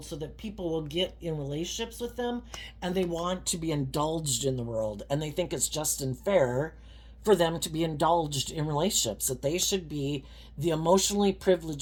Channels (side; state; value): both; identical; correlation 1.00